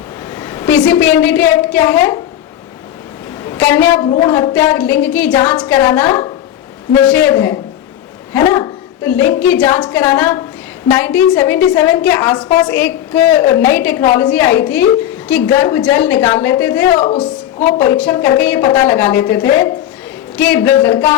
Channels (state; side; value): quieter; right; 11.6 dB